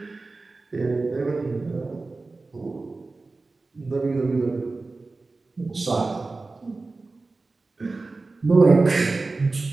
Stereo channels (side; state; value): left; quieter; 3.6 dB